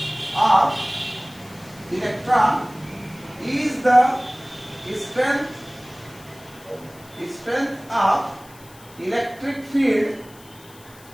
of electron, E is the strength of electric field,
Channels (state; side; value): noise; left; hiss, 23 dB below the sound